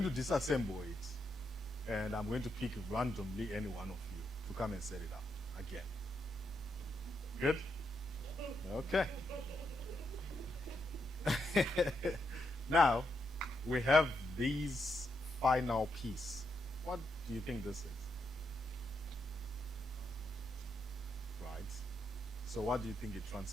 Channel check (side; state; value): both; normal; correlation 0.81